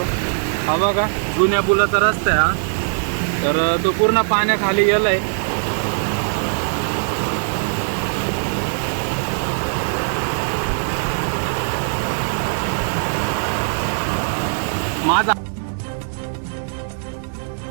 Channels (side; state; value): left; silent; digital silence